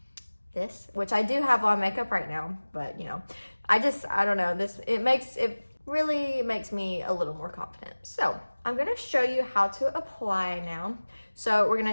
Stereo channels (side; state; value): both; inverted; correlation -1.00